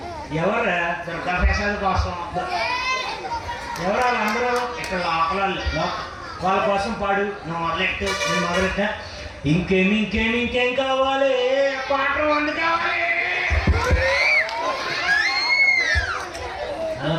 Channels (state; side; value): identical; both; correlation 1.00